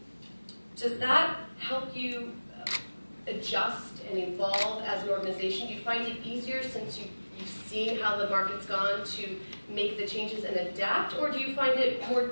does that help you adjust and evolve as an organization? Do you find it easier since you've seen how the market's gone to make the changes and adapt, or do you find it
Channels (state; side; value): inverted; both; correlation -1.00